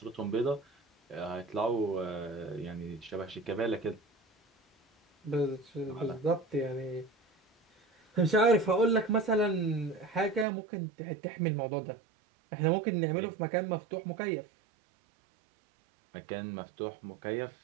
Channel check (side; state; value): left; drops out; at 10.5 s